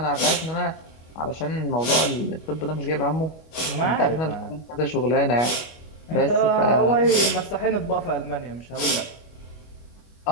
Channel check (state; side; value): late; right; 25 ms